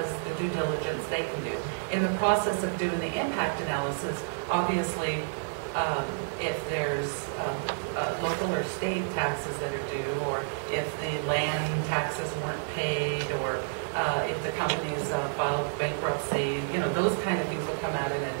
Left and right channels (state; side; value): silent; left; 58 dB below the other